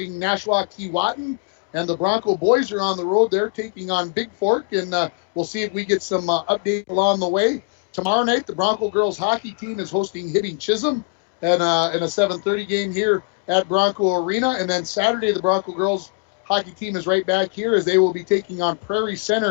Nashua Keewatin, and the Bronco boys are on the road. They're taking on Big Fork, and we'll see if we get some update along the way. Tomorrow night, the Bronco girls hockey team is hosting Hibbing Chisholm in a 7:30 game here at Bronco Arena, and then Saturday, the Bronco girls hockey team is right back here as they will be taking on Prairie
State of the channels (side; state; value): right; quieter; 34.7 dB